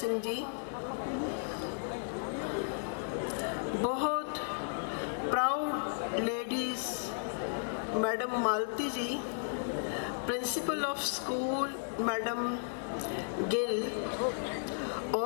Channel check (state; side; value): silent; right; digital silence